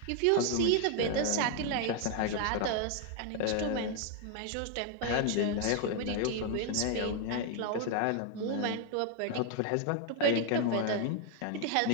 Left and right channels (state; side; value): different; both; correlation 0.00